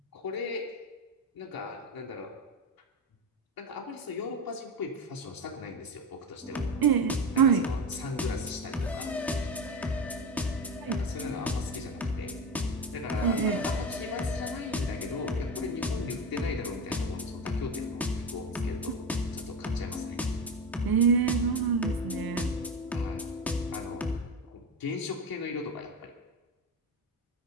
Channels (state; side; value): normal; both; correlation 0.21